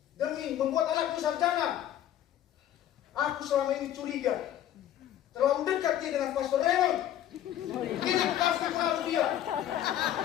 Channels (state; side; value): quieter; right; 11.6 dB